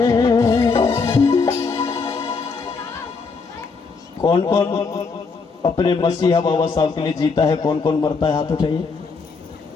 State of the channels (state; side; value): quieter; right; 4.7 dB